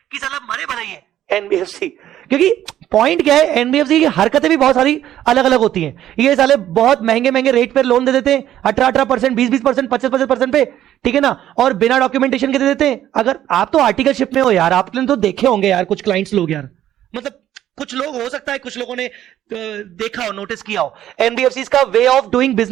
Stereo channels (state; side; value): quieter; left; 12.0 dB